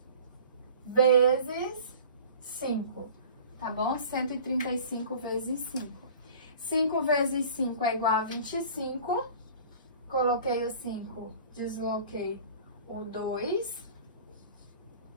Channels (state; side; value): inverted; both; correlation -0.44